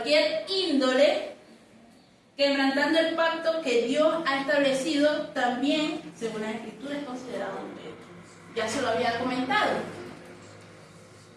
índole, quebrantando el pacto que Dios ha establecido, también, según las Escrituras, es considerado adulterio. Ya se lo había comentado.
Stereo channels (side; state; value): both; identical; correlation 1.00